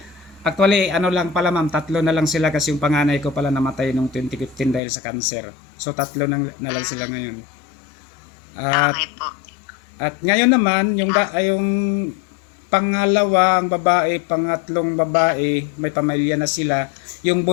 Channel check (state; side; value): drops out; right; at 4.8 s